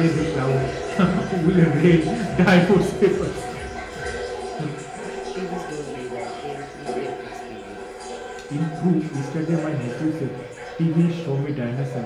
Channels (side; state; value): both; identical; correlation 1.00